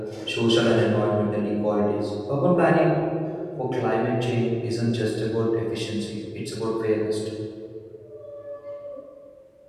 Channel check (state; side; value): identical; both; correlation 1.00